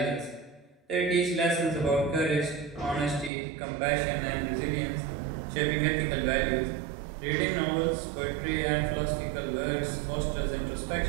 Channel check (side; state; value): left; drops out; at 3.3 s